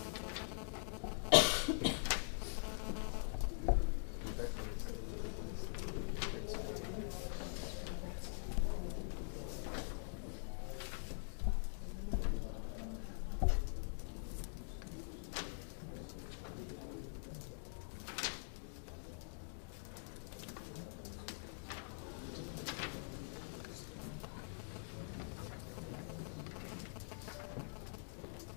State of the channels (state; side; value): silent; right; digital silence